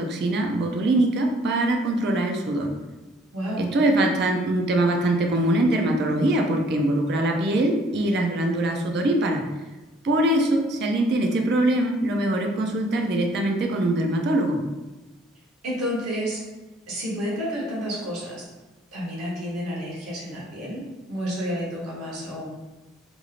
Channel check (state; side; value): normal; both; correlation 0.61